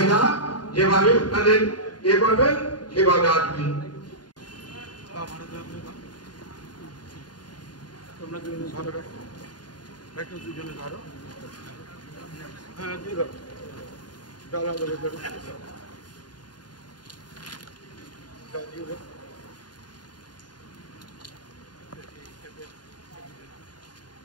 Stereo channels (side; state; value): right; late; 0.70 ms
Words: যেভাবে আপনাদের ইয়ে করবেন সেভাবে আসবেন। তোমরা দুজনে ধরো, একটু দুজনে ধরো, হ্যাঁ দিয়ে ধরো, ডালা ধরে ধরো,